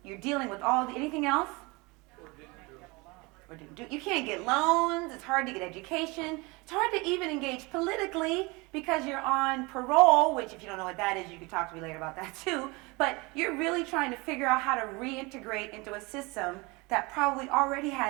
you're dealing with anything else? Or didn't do. You can't get loans, it's hard to get education, it's hard to even engage politically because you're on parole, which if you don't know what that is, you can talk to me later about that too, but you're really trying to figure out how to reintegrate into a system that probably already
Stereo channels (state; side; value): quieter; left; 25.8 dB